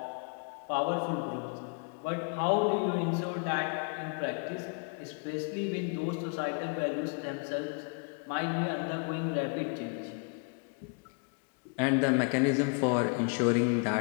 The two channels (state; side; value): quieter; right; 37.6 dB